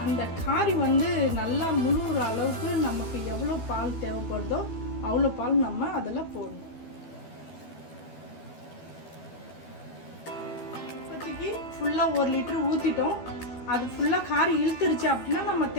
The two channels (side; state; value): right; late; 12 ms